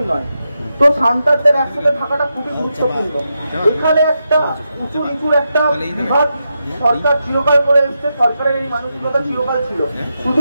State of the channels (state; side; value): inverted; both; correlation -0.86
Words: নয়। তো সাঁওতালদের একসাথে থাকাটা খুবই গুরুত্বপূর্ণ। এখানে একটা উঁচু নিচুর একটা বিভাগ সরকার চিরকাল করে এসছে, সরকারের এই মানসিকতা চিরকাল ছিল।